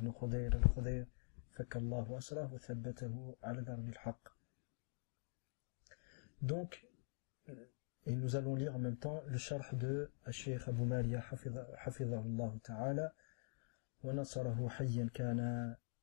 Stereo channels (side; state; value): right; silent; digital silence